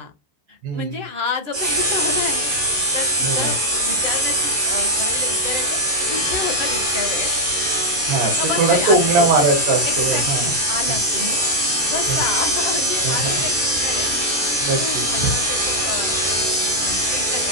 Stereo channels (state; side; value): late; left; 13 ms